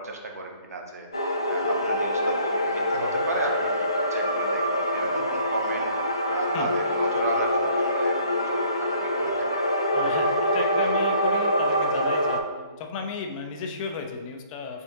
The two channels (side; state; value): both; inverted; correlation -0.59